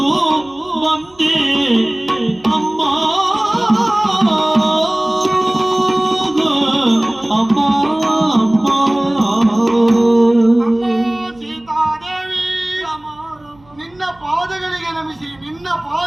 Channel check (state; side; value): noise; right; hum, 29 dB below the sound